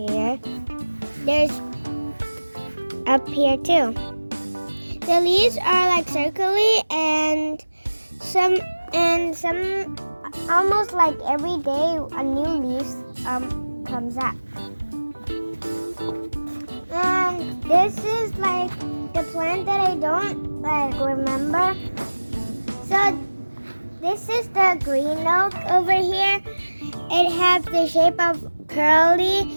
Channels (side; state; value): both; inverted; correlation -1.00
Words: There's up here too. The leaves are like circular and some almost like every day a new leaf comes up. And this is like the plant that I don't like remember. So this is the green oak over here. It has the shape of